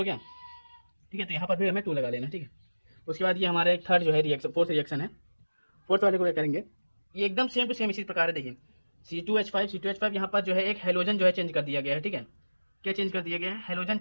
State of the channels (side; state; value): both; inverted; correlation -1.00